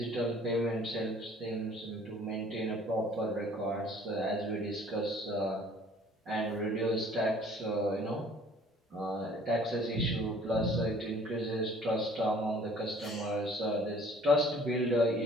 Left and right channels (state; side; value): normal; both; correlation 0.54